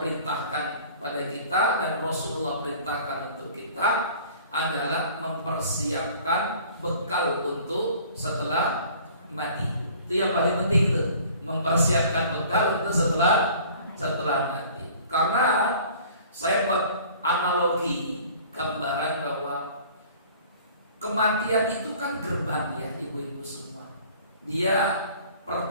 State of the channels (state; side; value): inverted; both; correlation -0.49